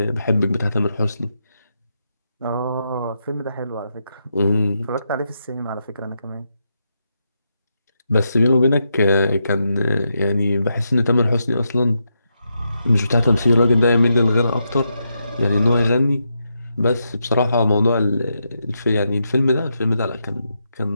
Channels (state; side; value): inverted; both; correlation -0.84